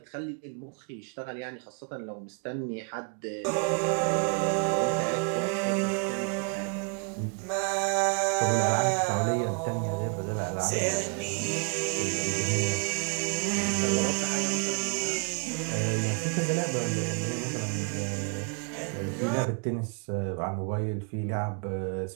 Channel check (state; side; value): quieter; left; 38.6 dB